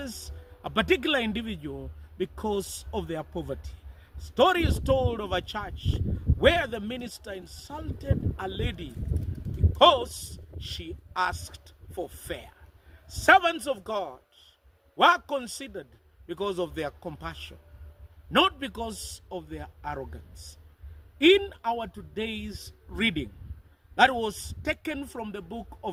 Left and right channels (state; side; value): identical; both; correlation 1.00